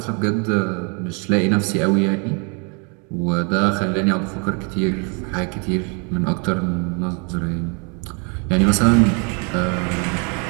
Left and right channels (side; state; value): left; quieter; 35.5 dB